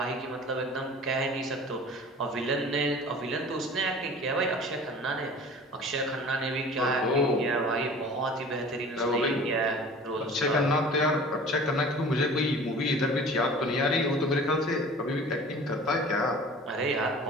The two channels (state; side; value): normal; both; correlation 0.43